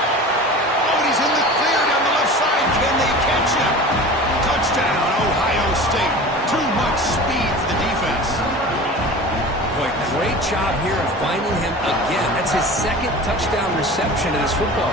and he's in the clear down the left side. Can they catch him? Touchdown, Ohio State. Too much speed for the defense. Boy, great job here of finding him again. That's his second touchdown reception in this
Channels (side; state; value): both; normal; correlation 0.36